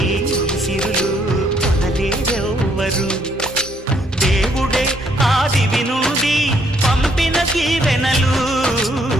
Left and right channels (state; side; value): normal; both; correlation 0.69